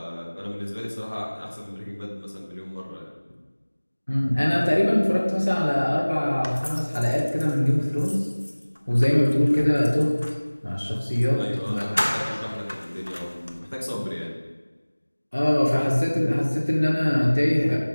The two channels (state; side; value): inverted; both; correlation -1.00